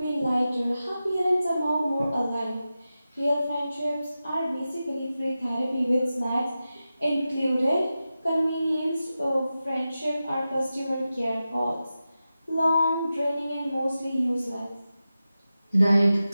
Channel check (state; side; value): inverted; both; correlation -0.93